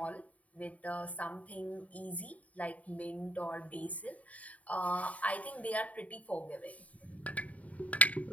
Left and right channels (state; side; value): late; right; 0.069 ms